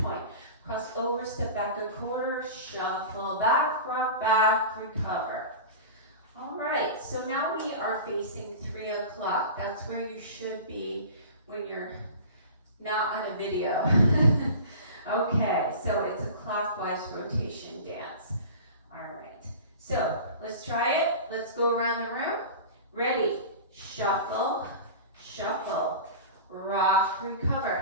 cross over, step back a quarter, shuffle back, rock back, recover. All right, so now we are facing 3 o'clock. That's where you should be when you're not on a video. Okay, so it's a clockwise rotation dance. All right, so let's try it. Let's go around the room. Ready, shuffle, shuffle, rock,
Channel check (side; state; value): both; inverted; correlation -0.35